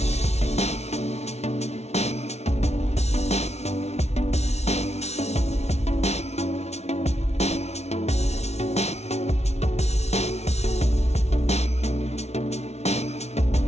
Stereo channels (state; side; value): late; right; 0.31 ms